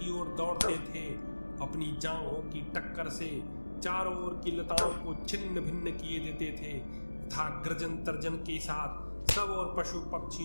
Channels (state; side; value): inverted; both; correlation -1.00